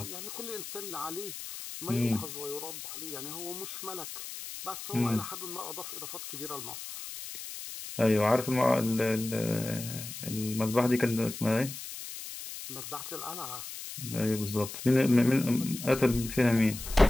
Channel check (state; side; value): noise; left; hiss, 10 dB below the sound